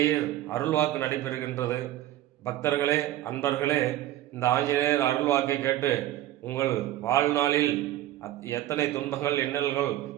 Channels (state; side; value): quieter; left; 13.9 dB